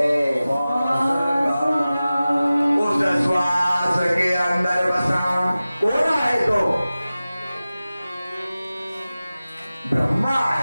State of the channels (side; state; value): both; inverted; correlation -0.96